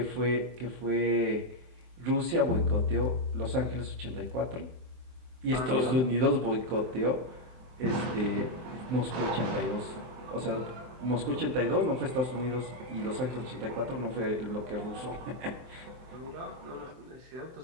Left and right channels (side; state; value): left; late; 23 ms